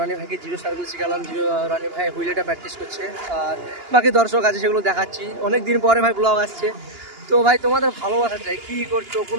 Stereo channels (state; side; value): late; left; 2.9 ms